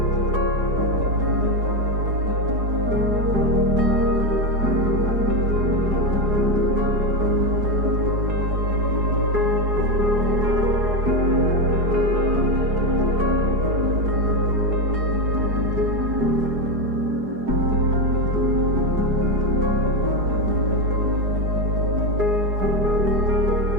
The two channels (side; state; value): left; late; 4.8 ms